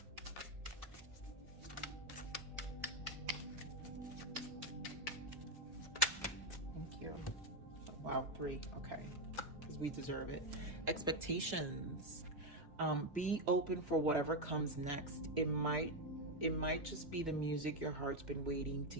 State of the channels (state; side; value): normal; both; correlation 0.06